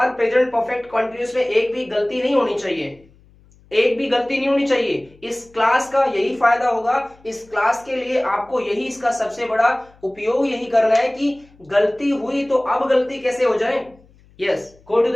प्रेजेंट परफेक्ट कंटिन्यूअस में एक भी गलती नहीं होनी चाहिए। एक भी गलती नहीं होनी चाहिए। इस क्लास का यही फायदा होगा, इस क्लास के लिए आपको यही इसका सबसे बड़ा उपयोग यही करना है कि गलती हुई तो अब गलती कैसे हो जाए। Yes, go to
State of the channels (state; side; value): noise; left; hum, 29 dB below the sound